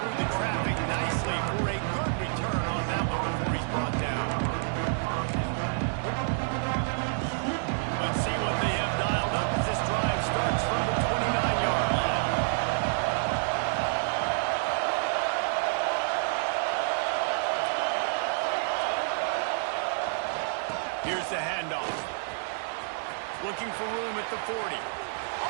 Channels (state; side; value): silent; left; digital silence